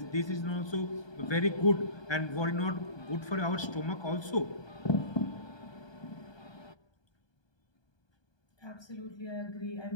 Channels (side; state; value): right; late; 1.2 ms